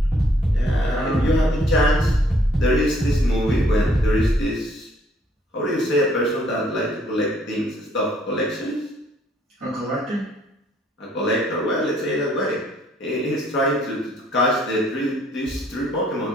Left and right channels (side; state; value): both; normal; correlation 0.64